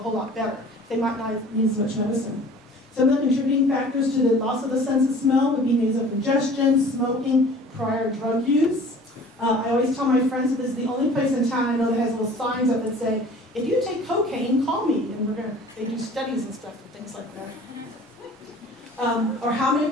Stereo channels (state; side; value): normal; both; correlation 0.47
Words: lot better. They might not need as much medicine. Some of the contributing factors to the loss of the sense of smell would be nasal congestion, smoking, prior drug use. I always tell my friends that this is the only place in town I know that has little signs up that say, if you take cocaine, call me. And they do studies and stuff and things like that. Or how many of